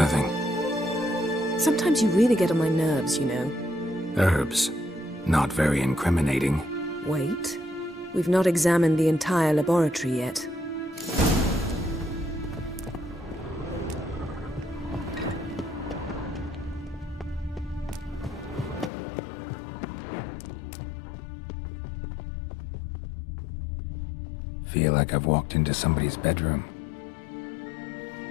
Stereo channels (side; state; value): right; drops out; at 18.9 s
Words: Sometimes you really get on my nerves, you know. Herbs. Not very incriminating. Wait. We've not examined the entire laboratory yet. feel like I've walked into somebody's bedroom.